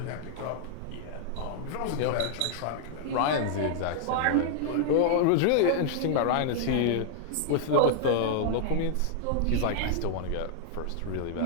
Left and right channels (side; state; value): both; different; correlation -0.01